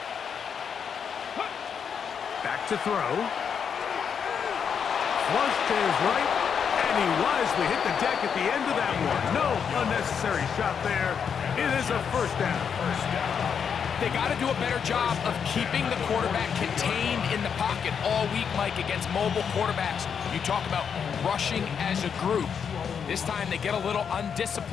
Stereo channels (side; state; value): right; quieter; 7.1 dB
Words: Back to throw. Flush to his right, and he wisely hit the deck at the end of that one. No unnecessary shot there. It is a 1st down. They got to do a better job of keeping the quarterback contained in the pocket all week, Mike, against mobile quarterbacks. You talk about rushing as a group. This time they get a little